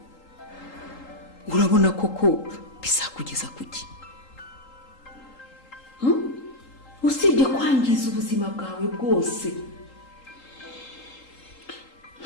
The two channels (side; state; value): right; late; 3.8 ms